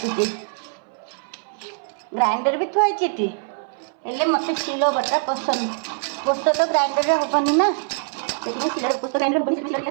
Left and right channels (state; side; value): silent; left; 61 dB below the other